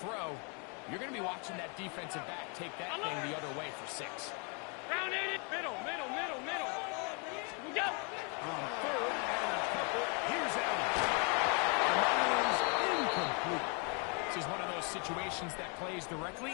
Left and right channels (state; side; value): quieter; right; 35.9 dB